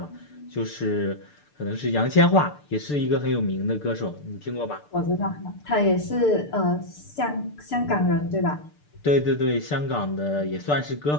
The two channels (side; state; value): right; late; 6.8 ms